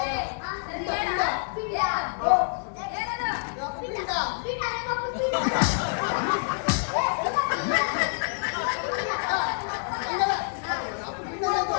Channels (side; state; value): right; silent; digital silence